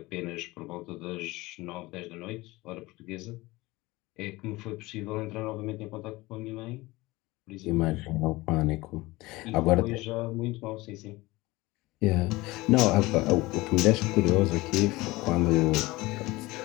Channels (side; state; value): right; quieter; 20.8 dB